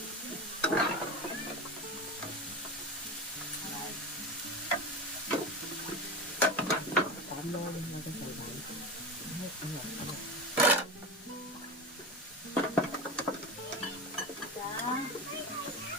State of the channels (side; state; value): both; normal; correlation 0.25